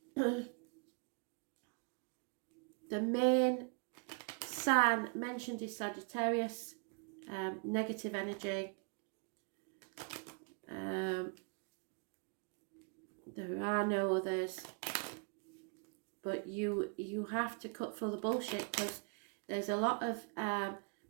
The main sign mentioned is Sagittarius, negative energy. There are no others, but you have to cut through the bullshit, because there's a lot of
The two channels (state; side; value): quieter; left; 38.3 dB